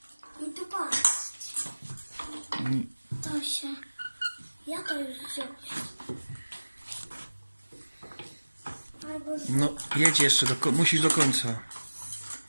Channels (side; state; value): both; inverted; correlation -1.00